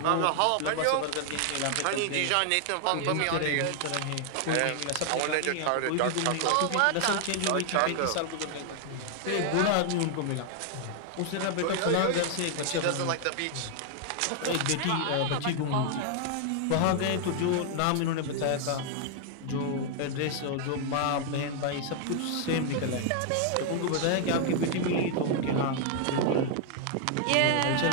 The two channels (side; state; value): both; different; correlation 0.00